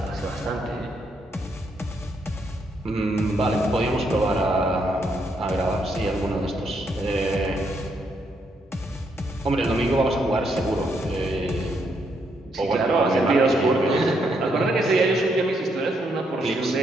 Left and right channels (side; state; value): both; normal; correlation 0.76